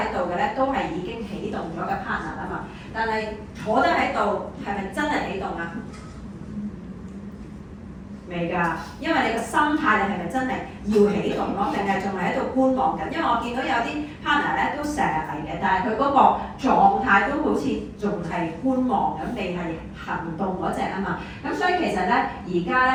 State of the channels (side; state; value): both; identical; correlation 1.00